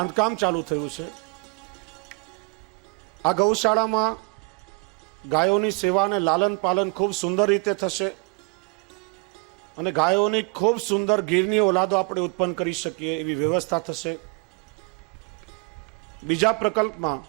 ચાલુ થયું છે. આ ગૌશાળામાં ગાયોની સેવા અને લાલન પાલન ખૂબ સુંદર રીતે થશે અને ગાયોની ખૂબ સુંદર ગીરની ઓલાદો આપણે ઉત્પન્ન કરી શકીએ એવી વ્યવસ્થા થશે. બીજા પ્રકલ્પમાં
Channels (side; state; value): left; quieter; 31.9 dB